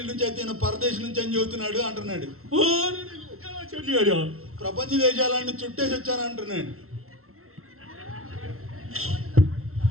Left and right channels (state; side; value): late; left; 0.63 ms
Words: నుంచి అయితే ఈయన పరదేశం నుంచి అని చెబుతున్నాడు అంటున్నాడు. ప్రపంచ దేశాలన్నీ చుట్టేసి వచ్చాను అంటున్నాడు.